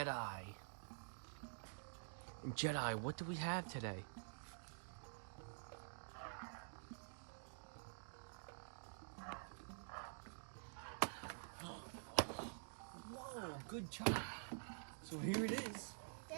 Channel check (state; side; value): silent; left; digital silence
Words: And Jedi, what do we have today? Whoa, good job. So here it is.